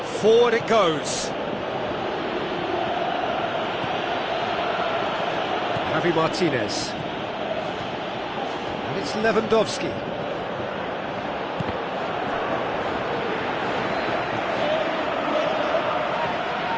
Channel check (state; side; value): identical; both; correlation 1.00